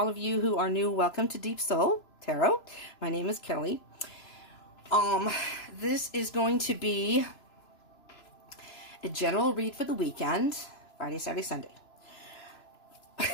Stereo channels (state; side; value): late; right; 3.0 ms